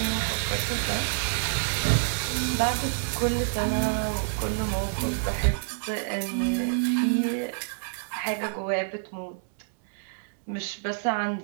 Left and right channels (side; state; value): left; silent; digital silence